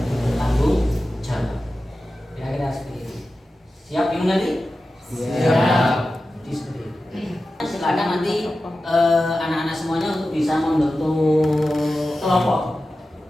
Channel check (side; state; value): both; normal; correlation 0.93